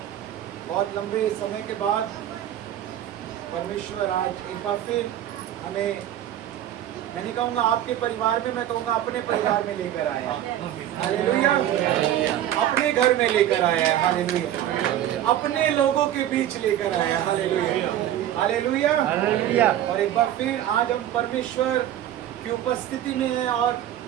बहुत लंबे समय के बाद परमेश्वर आज एक बार फिर हमें, मैं नहीं कहूँगा आपके परिवार में, मैं कहूँगा अपने परिवार में लेकर आया है। हालेलुया। अपने घर में लेकर आया है। हालेलुया। अपने लोगों के बीच लेकर आया है। हालेलुया। हालेलुया। हालेलुया। और एक बार फिर आज हम परमेश्वर की उपस्थिति में हैं और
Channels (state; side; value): quieter; left; 11.9 dB